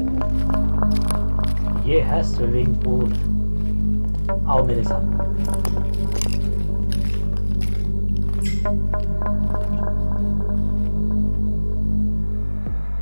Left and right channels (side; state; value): both; inverted; correlation -1.00